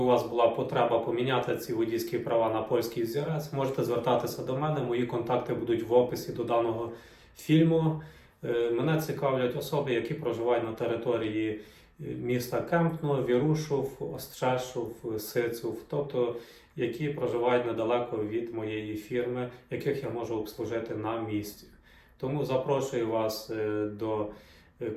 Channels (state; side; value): identical; both; correlation 1.00